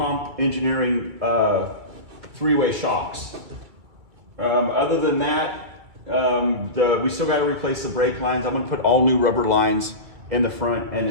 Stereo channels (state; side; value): late; left; 2.3 ms